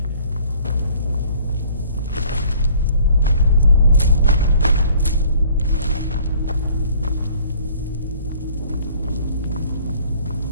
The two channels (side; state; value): both; inverted; correlation -0.54